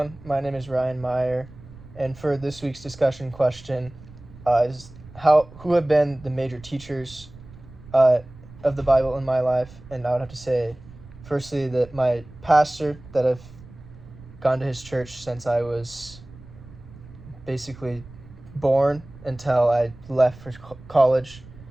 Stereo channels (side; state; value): right; noise; rumble, 19 dB below the sound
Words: my name is Ryan Meyer, and for this week's discussion question is who have been the major teachers uh, of the Bible in my life? And I would have to say, firstly, that my pastor that I've gone to his church since I was basically born until I left for college.